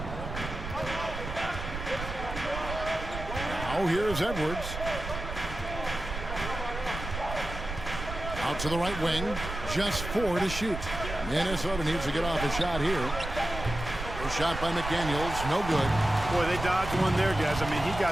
Now here's Edwards. Out to the right wing. Just 4 to shoot. Minnesota needs to get off a shot here. A shot by McDaniels. No good. Boy, they dodged one there, guys. I mean, he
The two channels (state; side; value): noise; right; rumble, 8 dB below the sound